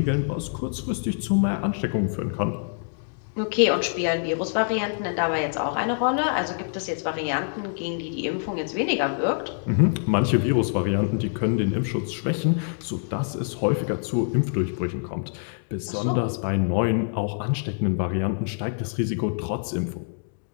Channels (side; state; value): right; silent; digital silence